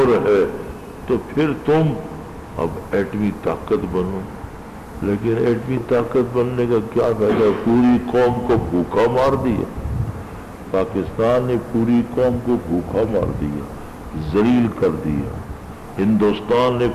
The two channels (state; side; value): identical; both; correlation 1.00